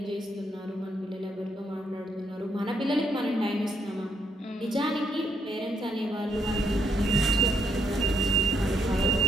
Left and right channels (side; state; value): both; normal; correlation 0.75